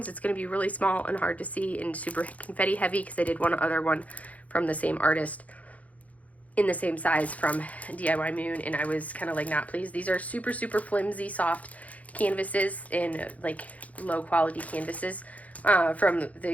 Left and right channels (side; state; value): right; late; 0.070 ms